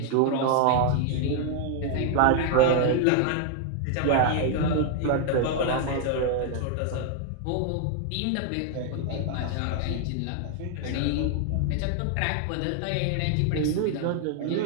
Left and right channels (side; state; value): both; different; correlation 0.00